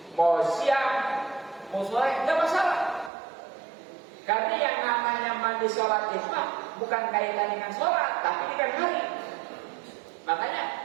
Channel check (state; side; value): drops out; left; at 3.1 s